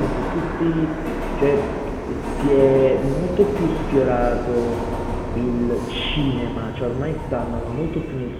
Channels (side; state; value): both; identical; correlation 1.00